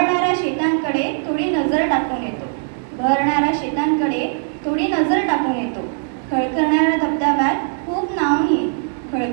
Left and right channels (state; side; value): silent; left; 61 dB below the other